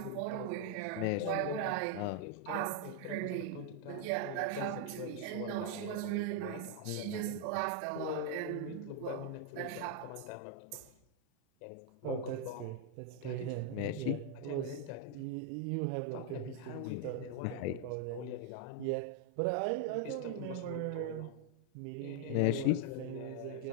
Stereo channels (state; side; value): different; both; correlation 0.00